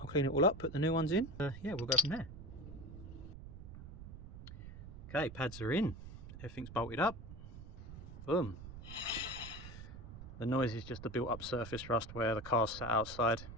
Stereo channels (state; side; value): noise; right; rumble, 12 dB below the sound